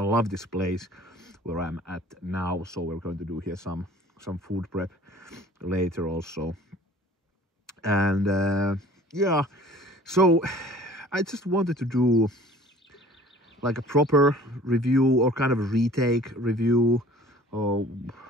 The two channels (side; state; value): both; normal; correlation 0.49